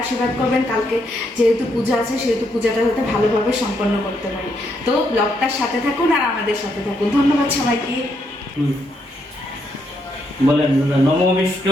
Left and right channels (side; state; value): both; normal; correlation 0.76